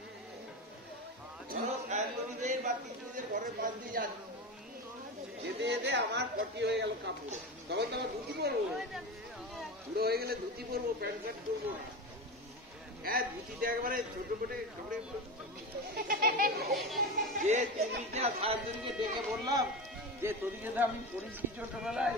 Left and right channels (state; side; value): normal; both; correlation 0.23